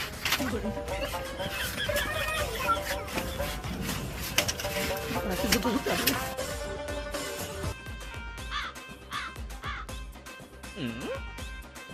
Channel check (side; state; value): both; identical; correlation 1.00